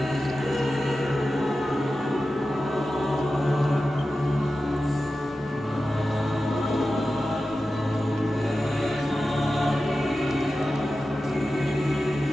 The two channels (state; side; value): normal; both; correlation 0.93